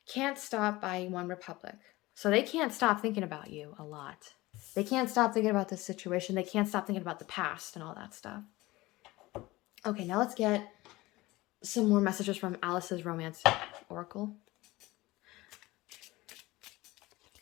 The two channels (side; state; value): right; quieter; 19.8 dB